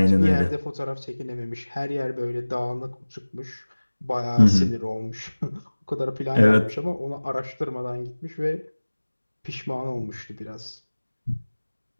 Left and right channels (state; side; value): inverted; both; correlation -1.00